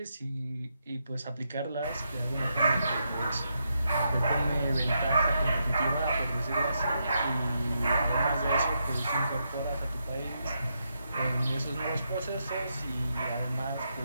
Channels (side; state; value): both; inverted; correlation -0.82